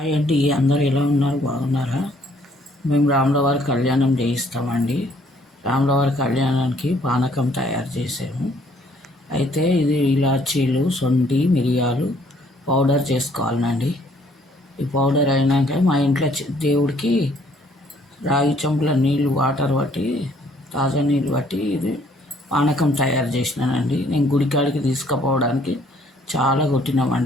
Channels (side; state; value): both; normal; correlation 0.63